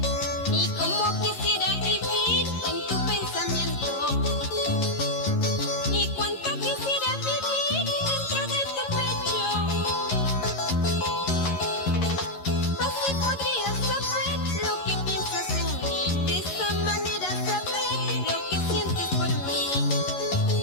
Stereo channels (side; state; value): right; late; 11 ms